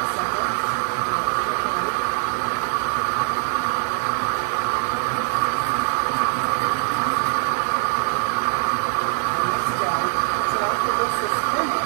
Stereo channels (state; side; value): silent; left; digital silence